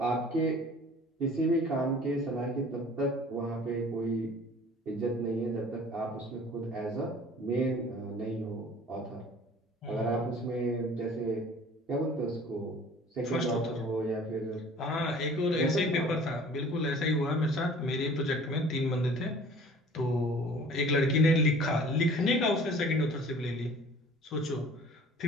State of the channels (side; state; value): both; normal; correlation 0.48